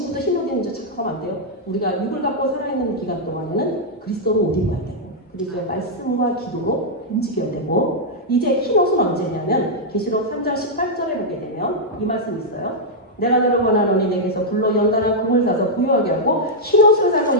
흰옷 입는 줄 착각하면 안 돼요. 우리가 육을 갖고 살아있는 기간 동안에는 그리스도로 옷 입어야 돼요. 그리고 말씀과 기도로 움직여야 되고, 이제 흰옷은 언제냐면 계시록 3장 18절에 보게 되면 이 말씀이 있어요. 내가 너를 원하노니 내게서 불로 연단한 금을 사서 부유하게 하고 흰옷을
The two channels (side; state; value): both; normal; correlation -0.05